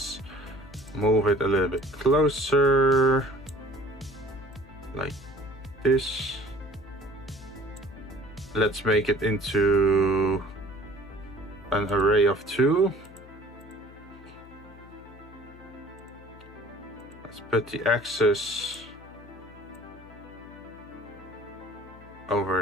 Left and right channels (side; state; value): left; noise; hum, 20 dB below the sound